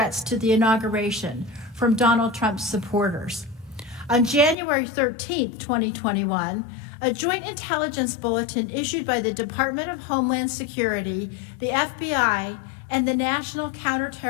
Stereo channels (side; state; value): right; drops out; at 4.5 s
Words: to the inauguration from Donald Trump's supporters. On January 13, 2021, a joint intelligence bulletin issued by the Department of Homeland Security, the FBI, and the National